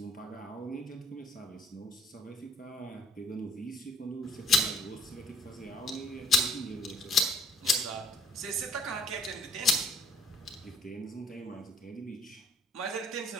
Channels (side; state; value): both; normal; correlation 0.58